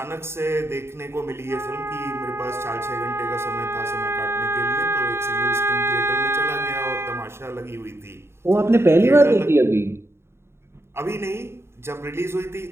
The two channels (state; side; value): late; left; 0.12 ms